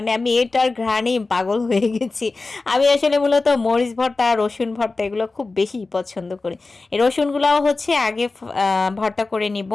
আমি এটার ঘ্রাণেই পাগল হয়ে গেছি। আমি আসলে মূলত মরিচ ভর্তা আর রসুন ভর্তা এগুলো খুব বেশি পছন্দ করি। এই রসুনগুলাও হচ্ছে আগে ভর্তা করে নিব।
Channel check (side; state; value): right; quieter; 3.6 dB